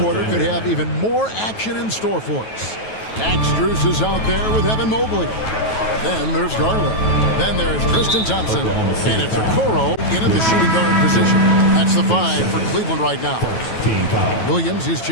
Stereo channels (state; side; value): late; right; 9.2 ms